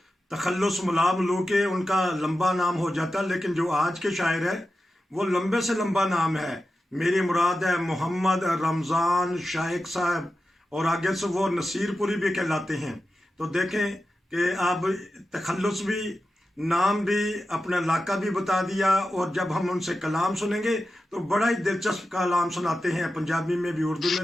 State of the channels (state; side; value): normal; both; correlation 0.92